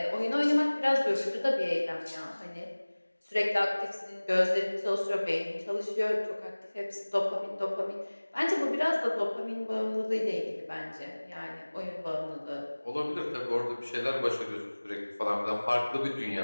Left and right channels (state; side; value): inverted; both; correlation -1.00